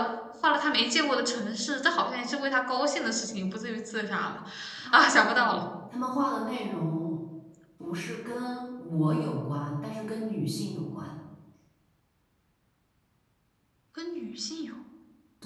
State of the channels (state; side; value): identical; both; correlation 1.00